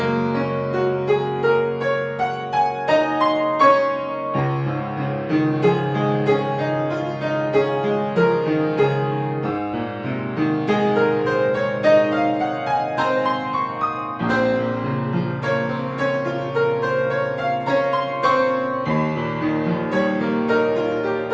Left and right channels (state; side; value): identical; both; correlation 1.00